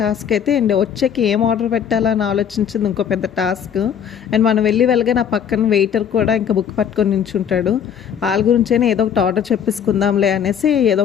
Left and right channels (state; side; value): quieter; right; 8.2 dB